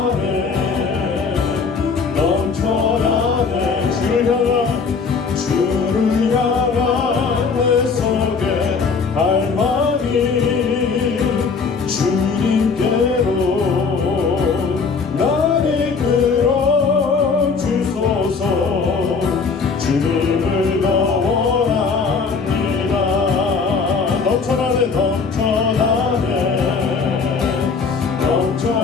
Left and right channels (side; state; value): right; quieter; 5.0 dB